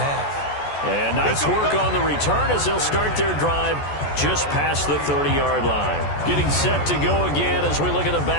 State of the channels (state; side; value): late; right; 14 ms